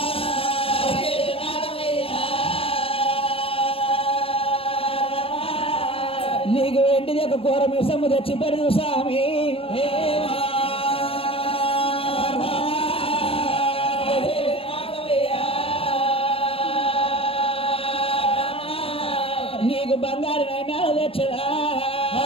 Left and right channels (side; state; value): right; late; 0.27 ms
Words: నీకు వెంటిది ఒక కూర మిసము తెచ్చి పెడదు స్వామి నీకు బంగారు నైనాలు తెచ్చడా